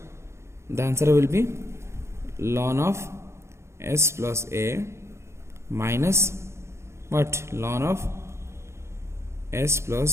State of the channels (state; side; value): late; left; 0.13 ms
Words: The answer will be ln of s plus a minus what? Ln of s